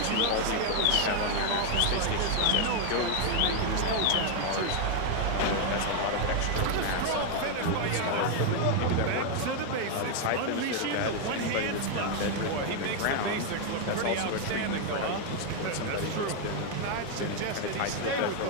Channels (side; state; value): both; different; correlation 0.01